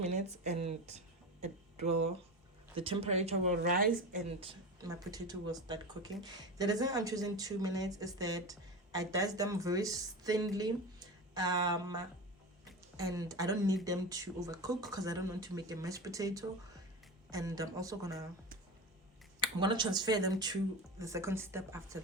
and the temperature will rise and my potato will start cooking. The reason I'm choosing 2 minutes is that I dice them very thinly, and I don't need them to overcook because I don't want to make a mashed potato. And I'm gonna transfer them to the second step after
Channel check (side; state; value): both; normal; correlation 0.25